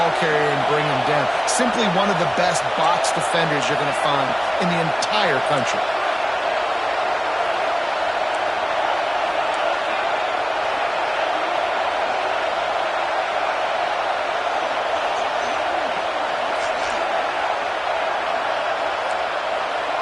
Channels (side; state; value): both; identical; correlation 1.00